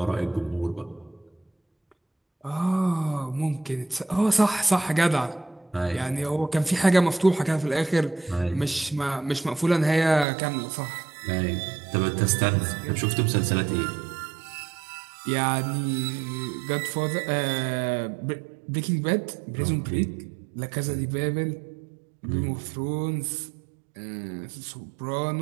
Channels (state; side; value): drops out; left; at 10.2 s